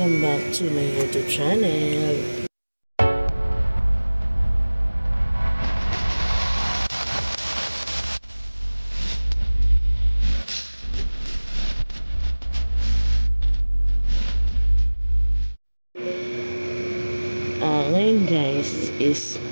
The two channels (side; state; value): both; inverted; correlation -1.00